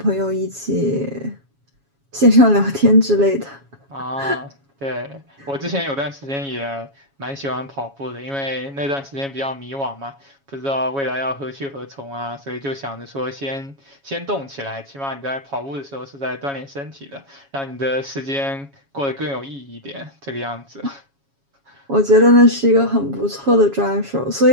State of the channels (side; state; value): left; late; 7.2 ms